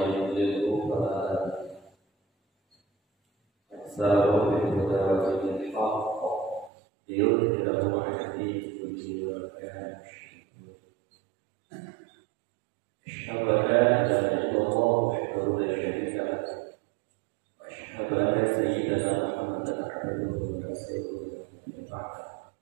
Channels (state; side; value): drops out; left; at 6.7 s